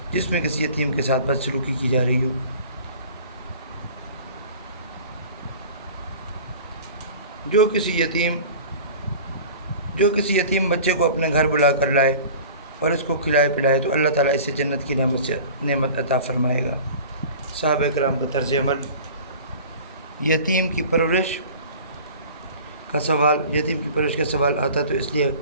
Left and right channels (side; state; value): both; inverted; correlation -0.41